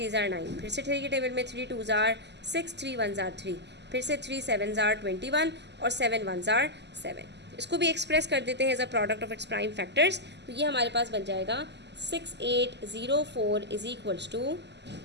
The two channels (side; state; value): left; late; 0.50 ms